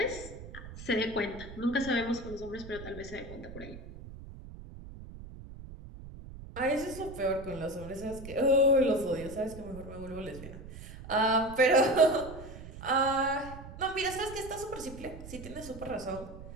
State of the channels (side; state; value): right; noise; rumble, 13 dB below the sound